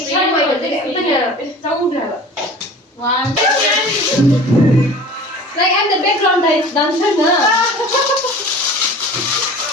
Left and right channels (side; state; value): both; normal; correlation 0.41